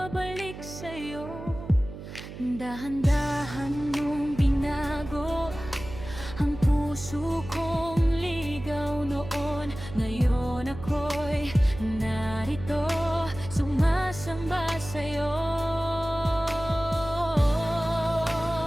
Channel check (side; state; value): right; noise; hum, 12 dB below the sound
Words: sa'yo. Dahan-dahan mong binago ang puso kong ligaw noon. Ngayon ako'y narito, sumasamba sa'yo.